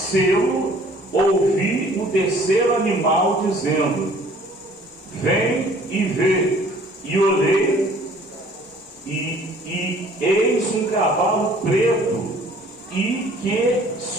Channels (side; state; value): both; normal; correlation 0.54